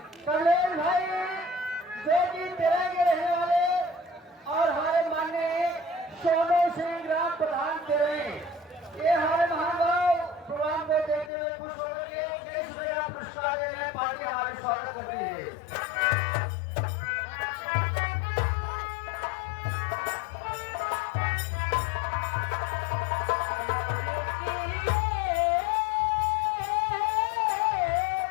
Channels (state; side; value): drops out; right; at 11.3 s